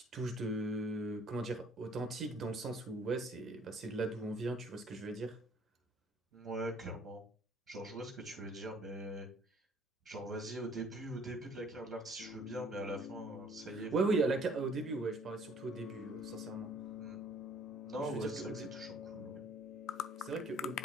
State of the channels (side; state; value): both; normal; correlation 0.58